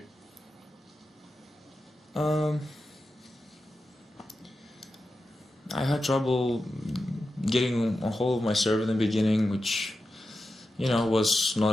I had trouble getting a hold of my serve in the beginning, which, was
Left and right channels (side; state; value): both; normal; correlation 0.91